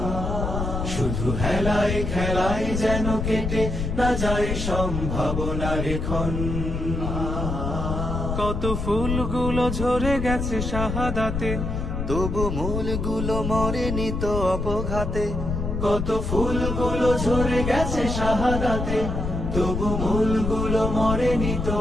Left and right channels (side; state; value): left; noise; rumble, 3 dB below the sound